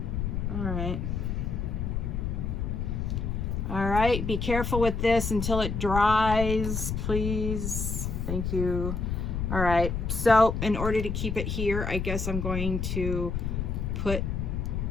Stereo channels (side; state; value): left; noise; rumble, 2 dB below the sound